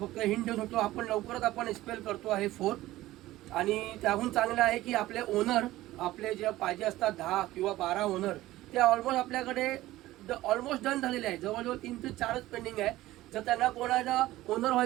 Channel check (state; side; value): quieter; left; 16.4 dB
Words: हिंट देऊ शकतो, आपण लवकरच आपण SPL करतो आहे 4। आणि त्याहून चांगलं आहे की आपले ओनर, आपले जे पाहिजे असतात 10 किंवा 12 ओनर, ते ऑलमोस्ट आपल्याकडे ऑलमोस्ट डन झालेले आहे। जवळजवळ 3 ते 4च पेंडिंग आहे। जर त्यांना कोणाला ओनर